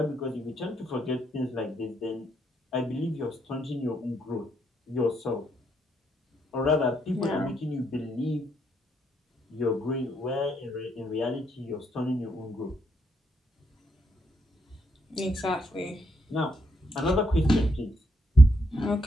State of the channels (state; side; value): normal; both; correlation 0.77